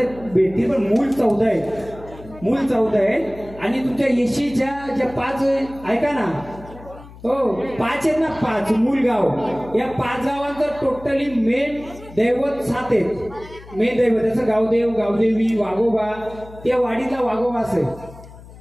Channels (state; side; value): noise; left; hum, 19 dB below the sound